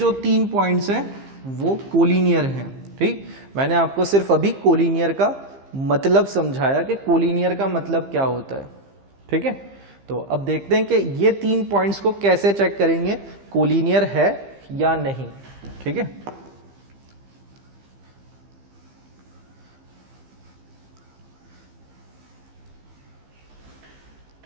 3 पॉइंट्स हैं वो कोलिनियर हैं। ठीक, मैंने आपको सिर्फ अभी कोलिनियर का मतलब समझाया कि कोलिनियर का मतलब क्या होता है। ठीक है, तो अब देखते हैं कि ये 3 पॉइंट्स को कैसे चेक करेंगे कोलिनियर है या नहीं। ठीक है,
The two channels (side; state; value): left; late; 15 ms